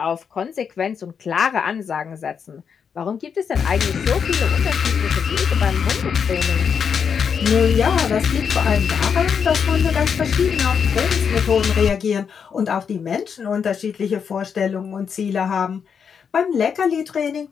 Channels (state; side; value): quieter; right; 6.8 dB